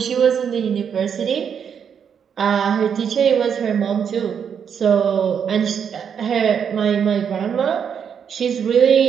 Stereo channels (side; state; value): left; quieter; 7.5 dB